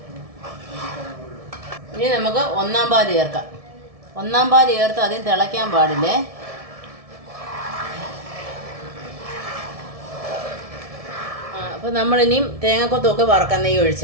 ഇനി നമുക്ക് 1-ാം പാല് ചേർക്കാം. 1-ാം പാല് ചേർത്ത് അതിന് തിളയ്ക്കാൻ പാടില്ലേ. അപ്പോൾ നമ്മളിനിയും തേങ്ങാക്കൊത്തൊക്കെ വറക്കാം.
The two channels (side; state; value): left; late; 1.7 ms